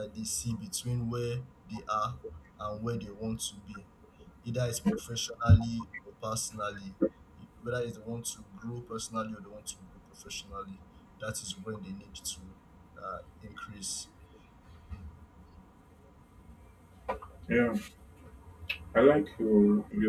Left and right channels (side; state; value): both; identical; correlation 1.00